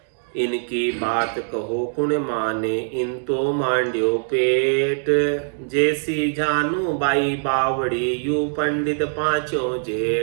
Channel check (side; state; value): left; silent; 64 dB below the other